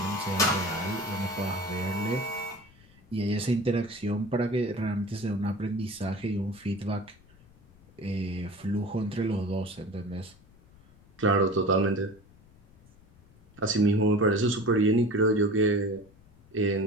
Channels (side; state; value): left; noise; rumble, 27 dB below the sound